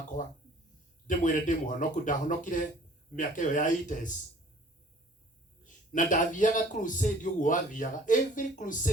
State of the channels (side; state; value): both; normal; correlation 0.53